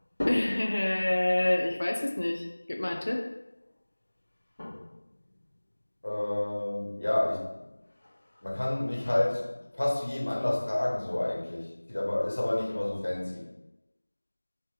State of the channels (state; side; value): inverted; both; correlation -1.00